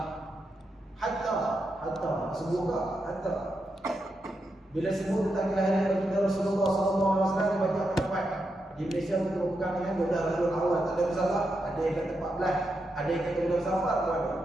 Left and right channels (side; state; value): both; normal; correlation 0.85